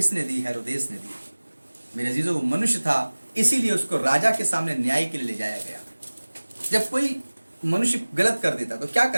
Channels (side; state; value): both; inverted; correlation -1.00